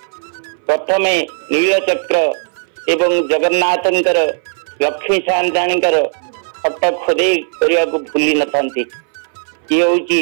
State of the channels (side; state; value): left; silent; 63 dB below the other